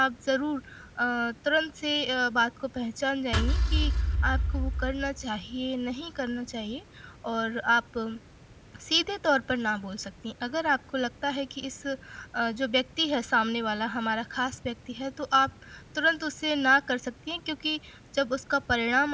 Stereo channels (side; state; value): both; identical; correlation 1.00